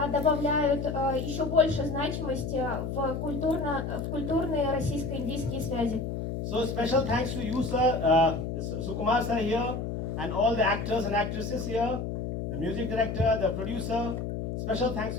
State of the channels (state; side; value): noise; left; hum, 4 dB below the sound